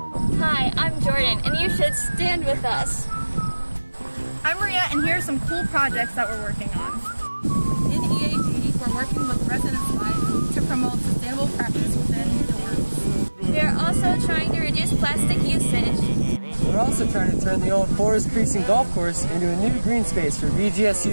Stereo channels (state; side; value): inverted; both; correlation -1.00